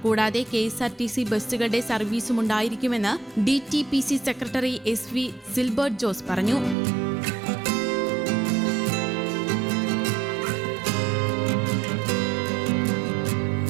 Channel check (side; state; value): left; drops out; at 6.8 s